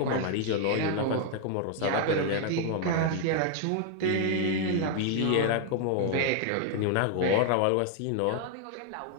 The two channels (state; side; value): different; both; correlation 0.00